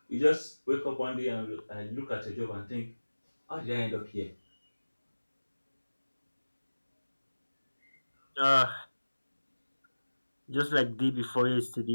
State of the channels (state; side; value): inverted; both; correlation -1.00